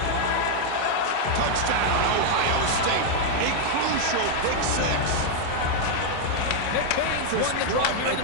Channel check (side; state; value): both; different; correlation 0.00